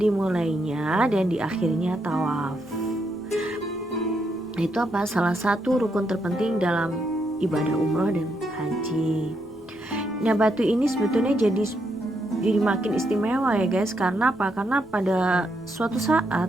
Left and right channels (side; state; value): left; noise; rumble, 27 dB below the sound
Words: dan diakhirinya tawaf. Itu apa? Salah satu rukun terpenting dalam ibadah umroh dan haji. Nah, batu ini sebetulnya jadi makin istimewa ya guys. Karena apa? Karena pada suatu